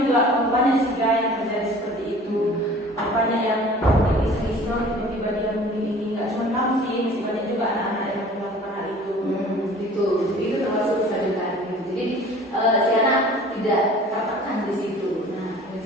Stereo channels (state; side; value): normal; both; correlation 0.47